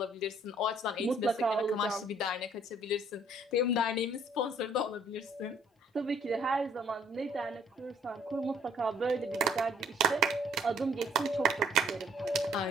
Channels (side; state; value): both; normal; correlation 0.61